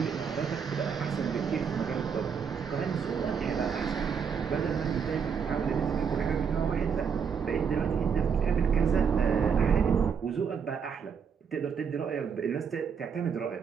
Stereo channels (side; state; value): left; quieter; 6.6 dB